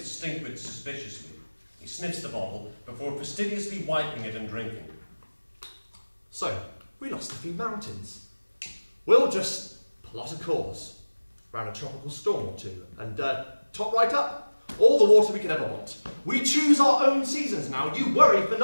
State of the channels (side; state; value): both; inverted; correlation -1.00